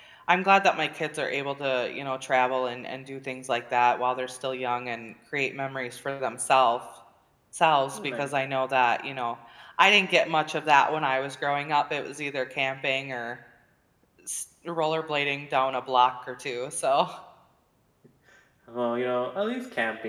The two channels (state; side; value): identical; both; correlation 1.00